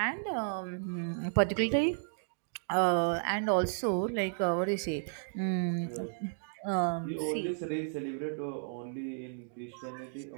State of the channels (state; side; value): silent; left; digital silence